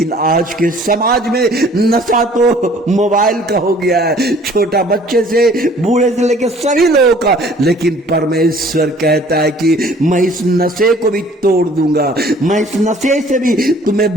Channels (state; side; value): normal; both; correlation 0.54